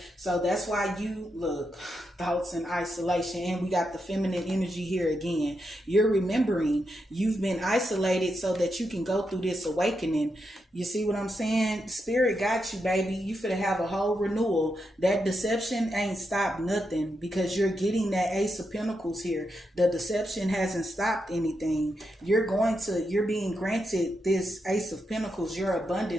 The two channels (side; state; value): both; normal; correlation 0.84